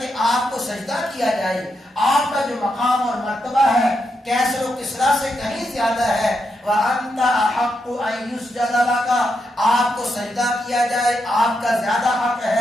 کہ آپ کو سجدہ کیا جائے. آپ کا جو مقام اور مرتبہ ہے کیسر و کسریٰ سے کہیں زیادہ ہے. وَأَنْتَ أَحَقُّ أَنْ يُسْجَدَ لَكَ آپ کو سجدہ کیا جائے، آپ کا زیادہ حق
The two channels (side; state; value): both; normal; correlation 0.83